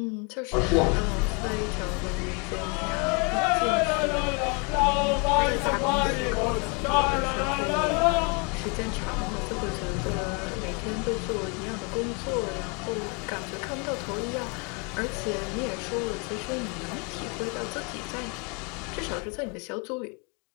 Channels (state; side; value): quieter; right; 32.6 dB